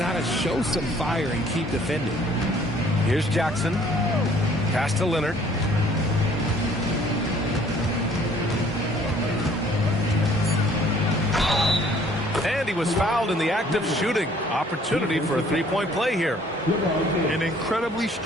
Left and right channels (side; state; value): both; normal; correlation 0.58